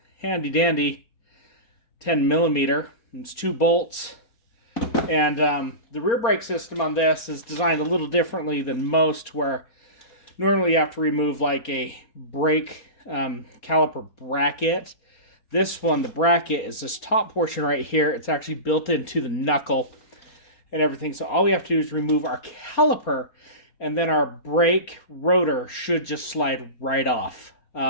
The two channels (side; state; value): right; late; 4.3 ms